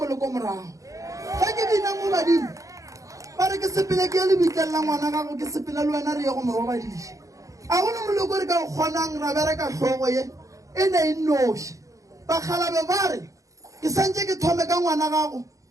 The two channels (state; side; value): late; left; 0.16 ms